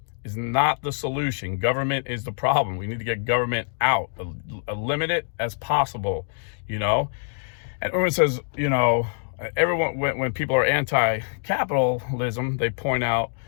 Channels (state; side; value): silent; right; 62 dB below the other